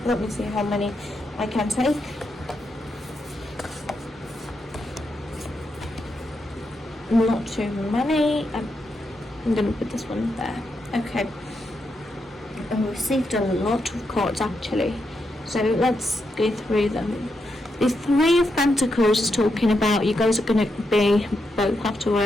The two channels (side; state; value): both; normal; correlation 0.83